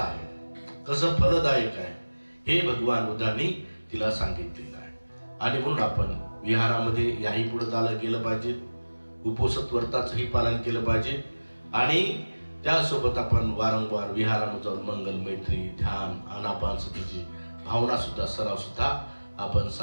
कसं फलदायक आहे, हे भगवान बुद्धांनी तिला सांगितलेलं आहे. आणि म्हणून आपण विहारामध्ये याही पुढे चालत गेलं पाहिजे, उपोषित व्रताचंही पालन केलं पाहिजे. आणि त्यासोबत आपण वारंवार विहारामध्ये जाऊन मंगल, मैत्री, ध्यान, आनापानसतीची भावना सुद्धा, सराव सुद्धा आपण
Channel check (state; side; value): inverted; both; correlation -1.00